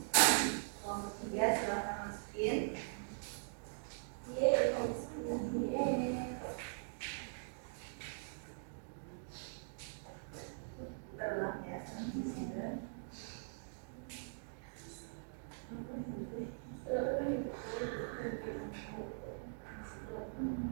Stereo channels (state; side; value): silent; left; digital silence